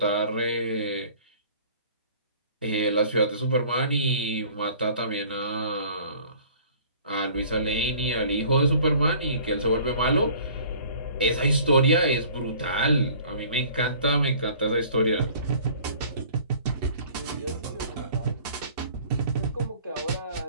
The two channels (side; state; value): both; inverted; correlation -0.51